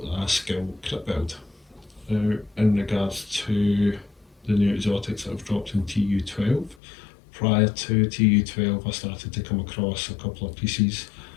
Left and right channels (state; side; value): drops out; right; at 6.8 s